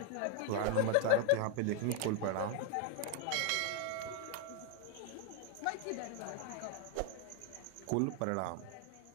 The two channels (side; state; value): both; different; correlation 0.00